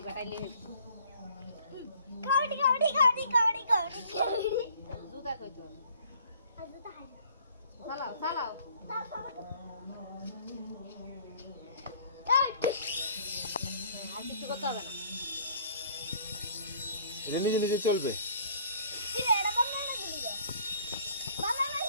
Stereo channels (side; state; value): both; inverted; correlation -0.56